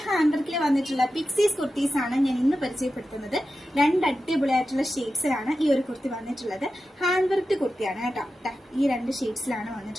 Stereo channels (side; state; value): both; normal; correlation 0.92